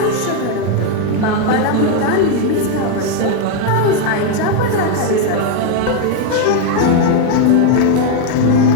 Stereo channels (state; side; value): different; both; correlation 0.01